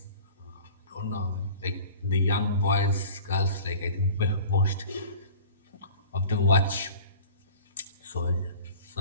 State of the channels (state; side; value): inverted; both; correlation -0.42